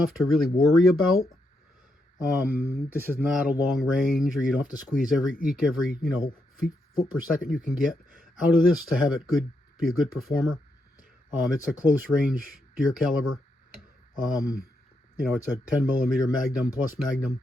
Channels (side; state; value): both; normal; correlation 0.81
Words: to really worry about. This is not a long range, or you don't have to squeeze eke every foot per second you can get out of this to have it be a good performer. It's a close range deer caliber. It's a 10 millimeter Magnum plus Magnum.